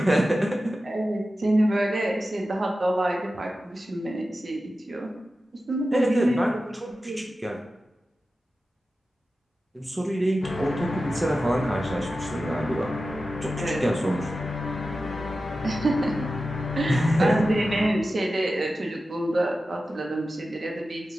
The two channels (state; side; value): normal; both; correlation 0.93